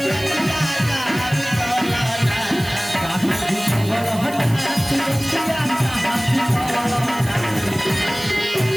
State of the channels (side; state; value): right; noise; hiss, 16 dB below the sound